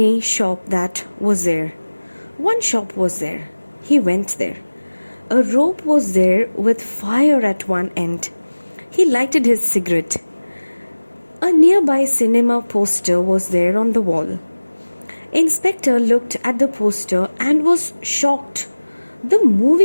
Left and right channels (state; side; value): inverted; both; correlation -1.00